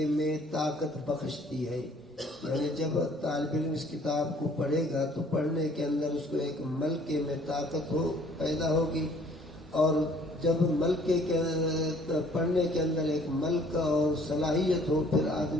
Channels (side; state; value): both; normal; correlation 0.58